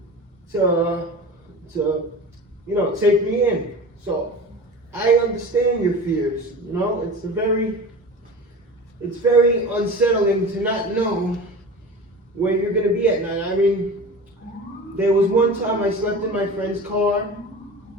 to take me in. So I understand your fears. You know, it's very unsettling to not know where you're gonna be at night. I mean, there was one time I slept in my friend's car,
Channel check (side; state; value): both; normal; correlation 0.34